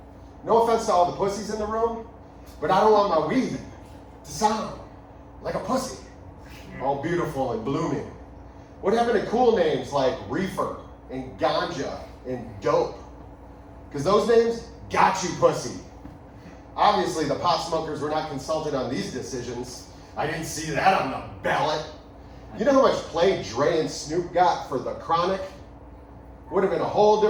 no offense to all the pussies in the room, but I don't want my weed to sound like a pussy, all beautiful and blooming. What happened to cool names like reefer and ganja and dope? Because those names got you pussy. Obviously, the pot smokers were not consulted on these decisions. I didn't see that on the ballot. You know how much play Dre and Snoop got for The Chronic? Would have been a whole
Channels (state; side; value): identical; both; correlation 1.00